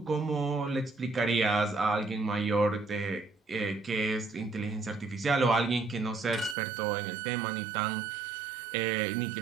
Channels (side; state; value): left; drops out; at 6.6 s